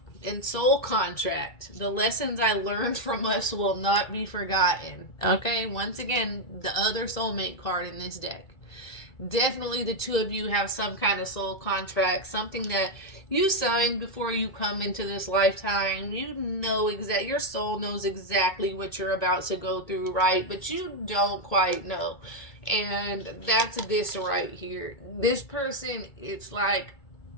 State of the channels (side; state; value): right; late; 2.3 ms